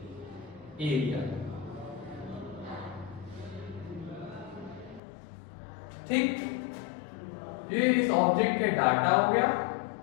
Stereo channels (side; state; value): right; drops out; at 5.0 s